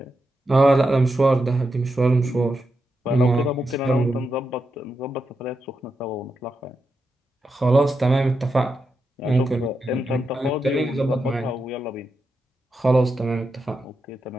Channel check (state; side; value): normal; both; correlation 0.86